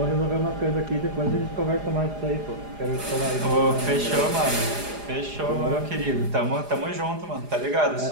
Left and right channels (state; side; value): late; left; 4.9 ms